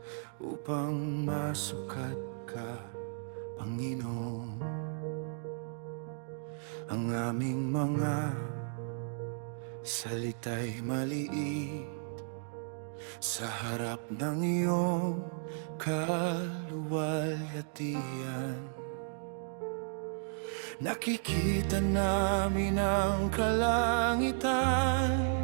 upang masukat ka, Panginoon. Ang aming mga salita'y maliit sa harap ng iyong kaluwalhatian. Nakikita namin ang kalangitan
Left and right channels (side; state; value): left; silent; digital silence